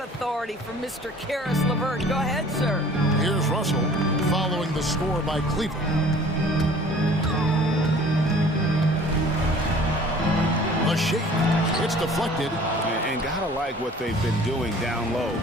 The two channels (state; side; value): normal; both; correlation 0.49